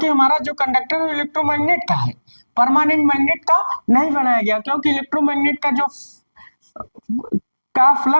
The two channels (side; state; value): both; inverted; correlation -1.00